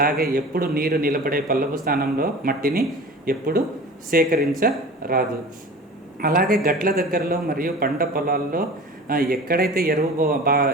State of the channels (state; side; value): normal; both; correlation 0.38